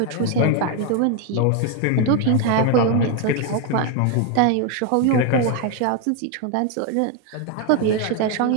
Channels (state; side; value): different; both; correlation 0.01